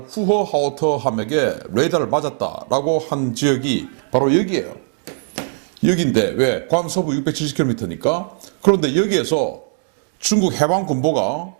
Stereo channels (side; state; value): left; silent; digital silence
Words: 후허하우터 함에게 레이더를 맞았다라고 한 지역이 바로 여기예요. 여기인데 왜? 괌 서부 670km니까. 그런데 여기에서 중국 해방군보가